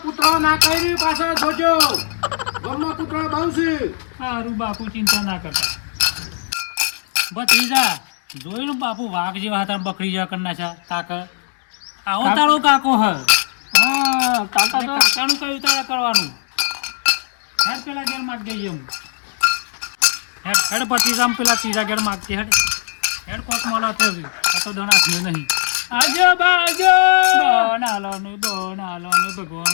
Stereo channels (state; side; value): silent; right; digital silence